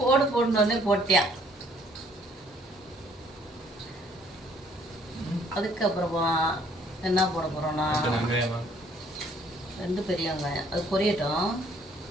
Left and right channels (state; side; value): normal; both; correlation 0.61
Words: போடு. போடணுன்னே போட்டியா. அதுக்கப்புறமா என்ன போட போறோம்னா 2 பெரிய வெங்காயம், அது பொரியட்டும்.